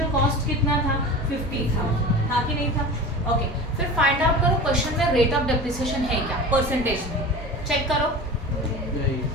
कॉस्ट कितना था, 50,000 था कि नहीं था. ओके. फिर फाइंड आउट करो क्वेश्चन में रेट ऑफ डेप्रिसिएशन है क्या, परसेंटेज में. चेक करो,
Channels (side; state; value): both; normal; correlation 0.33